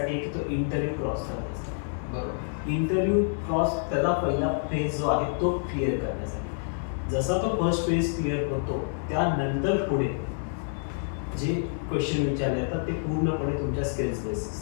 की तो इंटरव्ह्यू क्रॉस करण्यासाठी. बरोबर, इंटरव्ह्यू क्रॉस त्याचा पहिला फेज जो आहे तो क्लिअर करण्यासाठी. जसा तो फर्स्ट फेज क्लिअर होतो त्यानंतर पुढे जे क्वेश्चन विचारले जातात ते पूर्णपणे तुमच्या स्किल्स बेस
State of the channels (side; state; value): right; silent; digital silence